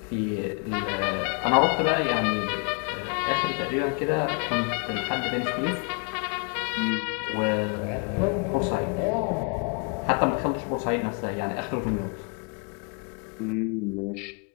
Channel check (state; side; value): quieter; right; 37.6 dB